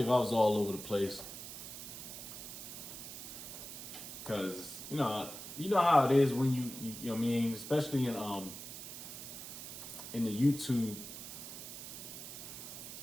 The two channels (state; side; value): noise; right; hiss, 10 dB below the sound